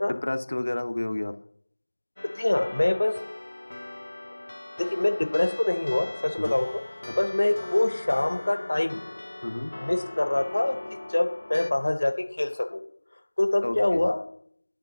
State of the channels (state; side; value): inverted; both; correlation -1.00